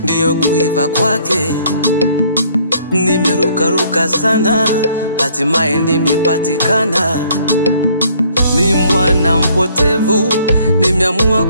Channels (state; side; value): inverted; both; correlation -0.62